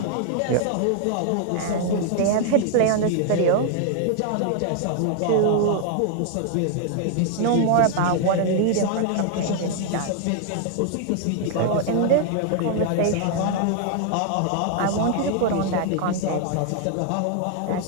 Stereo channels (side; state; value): both; different; correlation 0.00